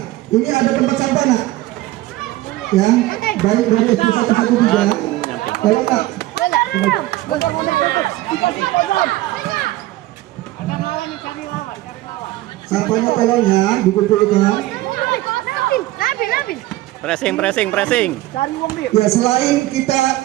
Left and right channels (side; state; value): left; quieter; 17.0 dB